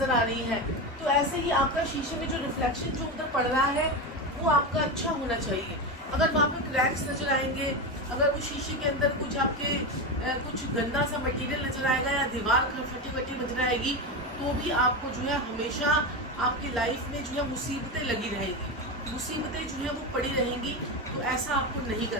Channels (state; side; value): normal; both; correlation 0.17